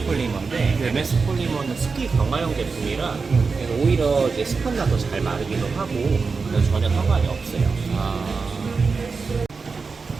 폴리머인데, 네. MS 폴리머는 습기 강화형 제품이라 그래서 오히려 이제 습한나 더 잘 마르기도 하고, 그래서 전혀 상관이 없어요. 아.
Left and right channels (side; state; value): left; quieter; 4.7 dB